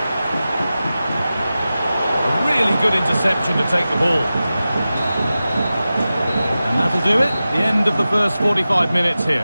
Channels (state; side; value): inverted; both; correlation -0.95